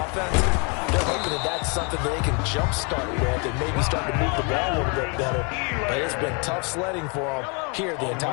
They're hoping that that's something that they can jumpstart with and maybe start to move the ball a little bit better. But it's been tough sledding for them here the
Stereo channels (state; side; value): quieter; right; 34.0 dB